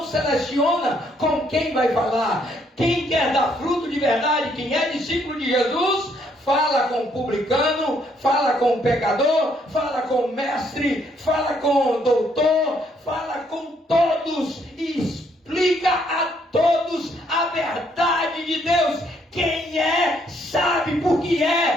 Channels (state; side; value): normal; both; correlation 0.69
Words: seleciona com quem vai falar. Quem quer dar fruto de verdade, quem é discípulo de Jesus, fala com o publicano, fala com o pecador, fala com o mestre, fala com o doutor, fala com todos e explica a todos a verdade de Deus. Quem é, sabe por que